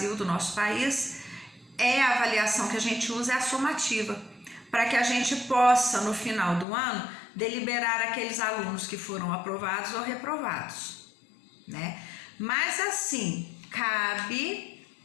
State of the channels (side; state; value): right; drops out; at 6.7 s